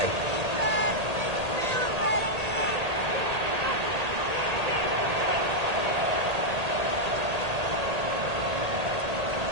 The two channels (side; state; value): left; late; 1.8 ms